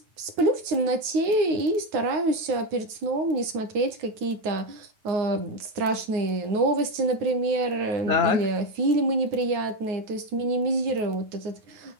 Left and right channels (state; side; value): late; left; 9.5 ms